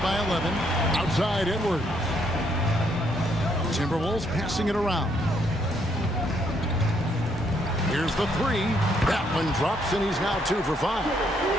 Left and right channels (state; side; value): normal; both; correlation 0.72